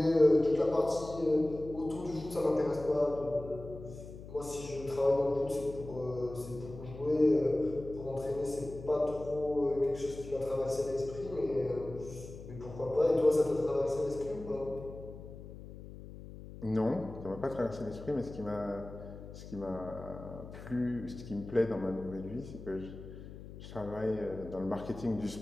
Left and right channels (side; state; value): left; noise; hum, 14 dB below the sound